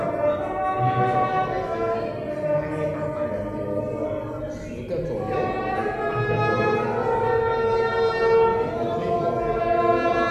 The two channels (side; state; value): both; identical; correlation 1.00